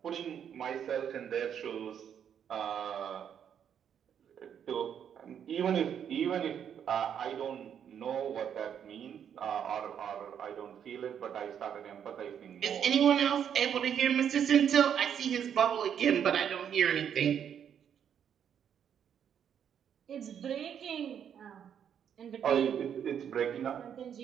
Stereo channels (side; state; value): left; quieter; 8.6 dB